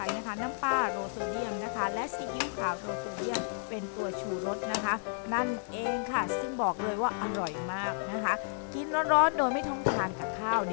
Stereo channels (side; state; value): right; silent; digital silence